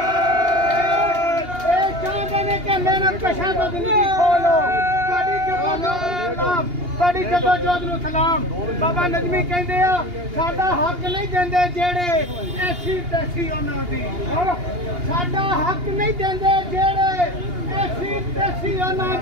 ये चाहते हैं कि मेहनत कशां तो जिंदगी खोलो। साडी जदोजहद नूं सलाम। बाबा नजमी कहंदे आ साडा हक नहीं देंदे जेड़े ऐसी तैसी उन्हां दी, साडा हक नहीं देंदे जेड़े ऐसी तैसी उन्हां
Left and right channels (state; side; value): late; left; 2.8 ms